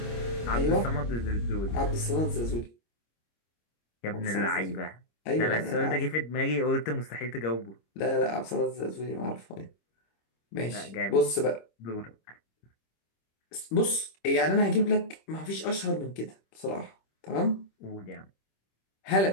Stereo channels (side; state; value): right; late; 26 ms